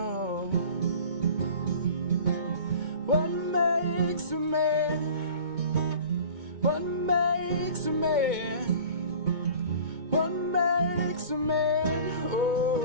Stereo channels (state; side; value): late; left; 2.2 ms